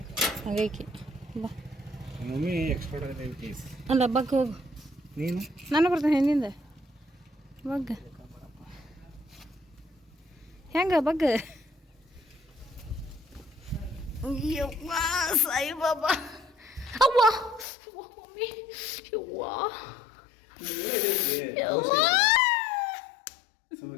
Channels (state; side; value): drops out; right; at 17.7 s